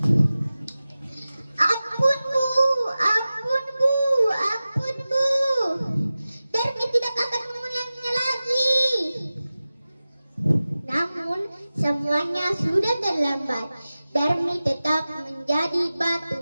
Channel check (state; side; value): inverted; both; correlation -0.96